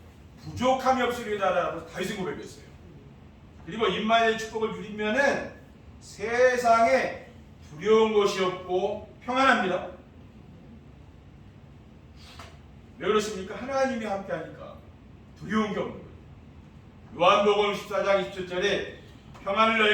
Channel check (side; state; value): both; identical; correlation 1.00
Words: 부족함이 없으리다라고 다윗이 고백했어요. 그리고 임마누엘의 축복을 누리면은 세상에 두려운 것이 없고 평안합니다. 왜 그렇습니까? 하나님이 함께하니까 두려운 게 없는 거예요. 요한복음 14장 27절에 평안을